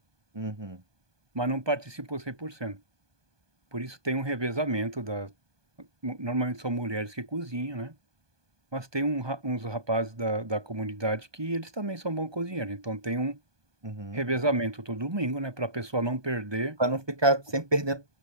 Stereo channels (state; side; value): late; left; 1.2 ms